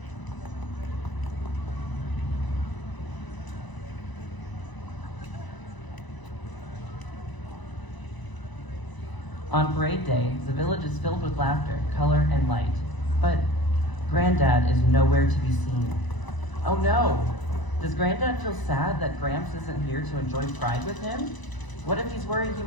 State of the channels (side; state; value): right; late; 1.0 ms